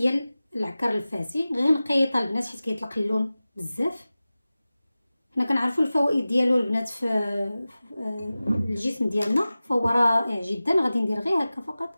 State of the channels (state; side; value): inverted; both; correlation -0.96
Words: العكر الفاسي، غير نقيطها البنات حيت كيطلق اللون بزاف. حنا كنعرفوا الفوائد ديالو البنات في الجسم ديالنا، فهو رائع جدا. غادي ندير غير هكا